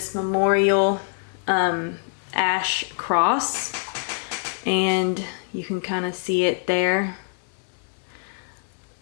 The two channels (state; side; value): silent; right; digital silence